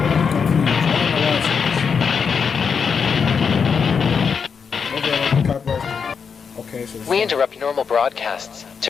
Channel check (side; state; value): right; quieter; 6.1 dB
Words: Okay, so we interrupt normal broadcasts to